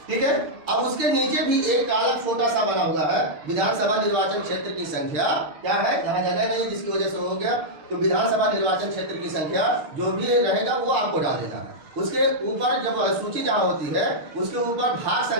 ठीक है, अब उसके नीचे भी एक कॉलम छोटा सा बना हुआ है, विधानसभा निर्वाचन क्षेत्र की संख्या क्या है? यहाँ जगह नहीं, जिसकी वजह से हो गया, तो विधानसभा निर्वाचन क्षेत्र की संख्या जो भी रहेगा वो आपको डाल देना है। उसके ऊपर जब सूची जहाँ होती है, उसके ऊपर भाग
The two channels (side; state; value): left; late; 6.7 ms